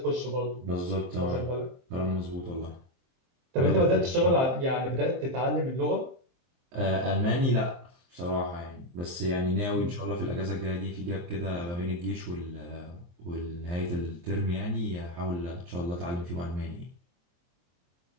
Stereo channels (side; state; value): left; late; 23 ms